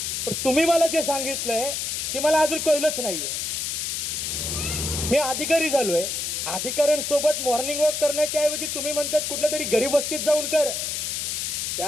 पण तुम्ही मला जे सांगितलंय ते मला अजून कळलंच नाहीये. मी अधिकारी झालोय, अधिकाऱ्यांसोबत मॉर्निंग वॉक करण्याच्या ऐवजी तुम्ही म्हणतात कुठल्या तरी गरीब वस्तीत जाऊन कर.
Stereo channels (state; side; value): noise; left; hiss, 2 dB below the sound